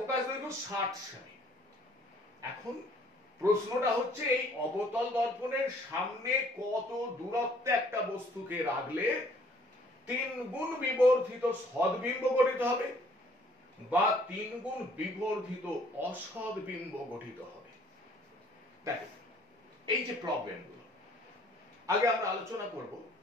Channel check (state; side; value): normal; both; correlation 0.59